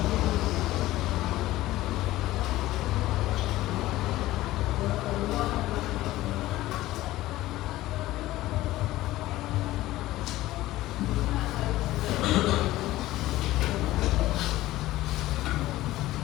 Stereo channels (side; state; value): right; quieter; 16.4 dB